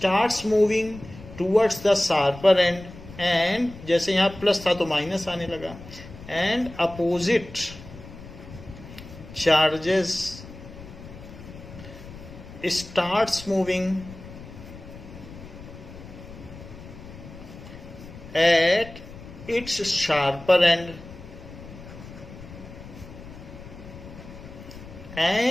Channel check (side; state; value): left; noise; rumble, 15 dB below the sound